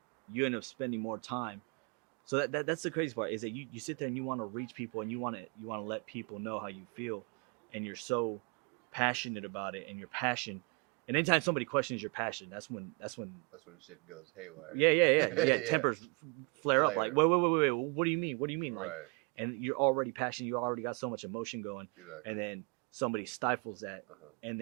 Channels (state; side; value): quieter; left; 31.2 dB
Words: you end up spending more time. So that's the crazy part is that you sit there and you want to reach people and you want to let people know how you feel, and you're so passionate about it, and your passion. And anytime somebody questions your passion, that's when Shit goes haywire. yeah. Tempers flare up. Like, Flare. wait. What do you mean? What do you mean? Like, Right. and you're already passionate. You already got so much emotion going, Exactly. and then somebody stifles that, Uh-huh. and